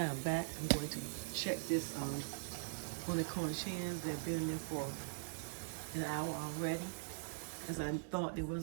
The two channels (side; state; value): left; silent; digital silence